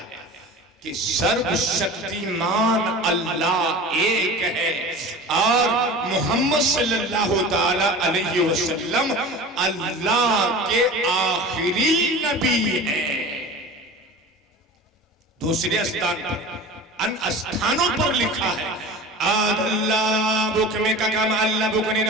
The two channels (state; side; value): normal; both; correlation 0.36